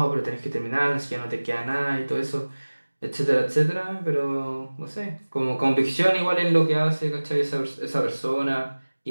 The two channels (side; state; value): both; inverted; correlation -1.00